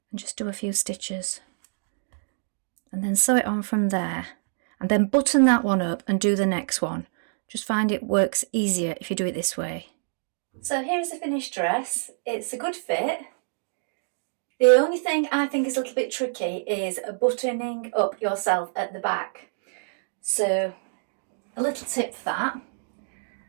and just do a few stitches and then sew it on from there, and then button that one up and do the next one. Just find it works easier if you do it this way. So here's the finished dress. It's a good fit. The only thing I think is a little bit tricky is buttoning up yourself at the back. So a little tip for that.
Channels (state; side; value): silent; left; digital silence